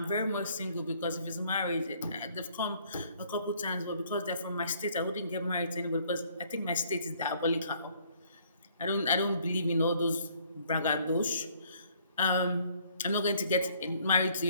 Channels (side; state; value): both; inverted; correlation -0.62